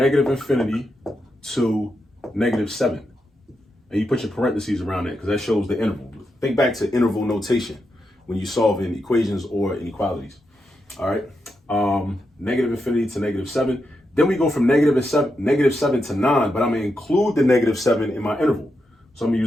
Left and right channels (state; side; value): normal; both; correlation 0.85